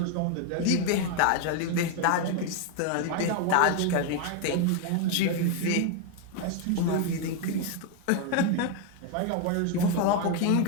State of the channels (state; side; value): different; both; correlation 0.01